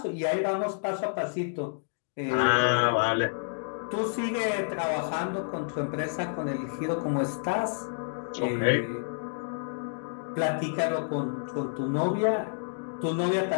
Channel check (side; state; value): right; silent; digital silence